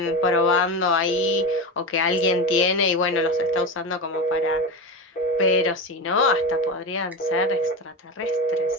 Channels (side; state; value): both; normal; correlation 0.21